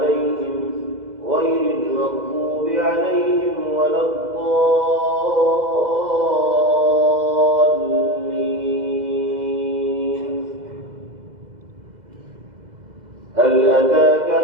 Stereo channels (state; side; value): late; left; 2.0 ms